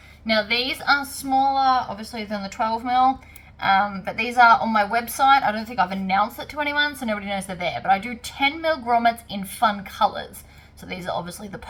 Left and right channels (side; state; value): both; identical; correlation 1.00